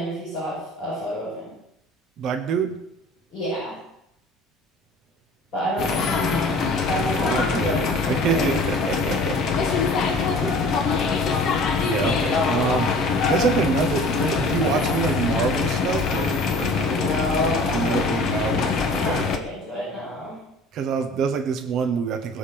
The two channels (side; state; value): both; normal; correlation 0.45